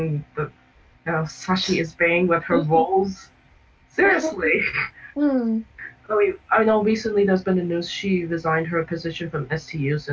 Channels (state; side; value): identical; both; correlation 1.00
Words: being with her roles? Seriously. I know recently there's been a news she resigned her position from STU